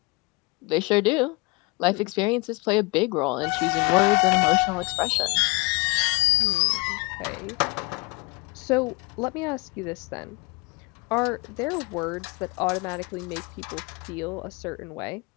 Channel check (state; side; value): quieter; right; 27.7 dB